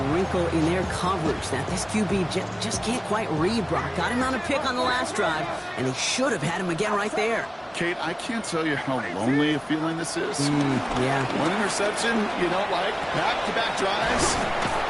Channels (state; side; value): identical; both; correlation 1.00